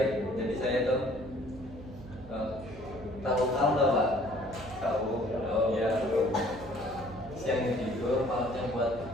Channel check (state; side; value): noise; right; hum, 15 dB below the sound